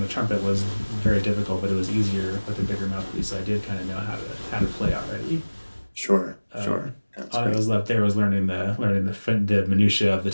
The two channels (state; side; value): inverted; both; correlation -1.00